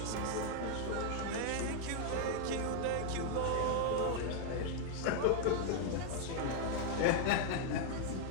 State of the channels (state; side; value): different; both; correlation 0.00